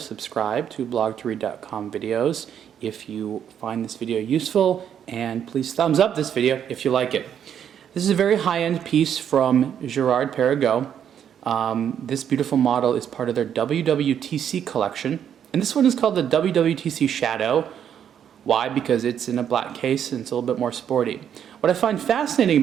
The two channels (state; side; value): quieter; left; 9.0 dB